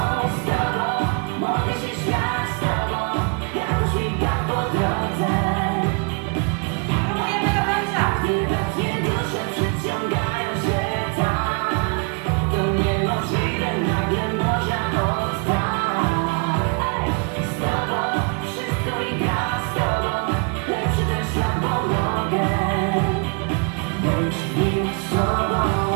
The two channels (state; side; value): quieter; left; 33.7 dB